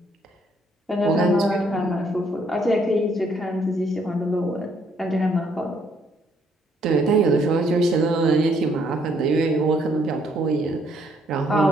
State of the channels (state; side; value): normal; both; correlation 0.68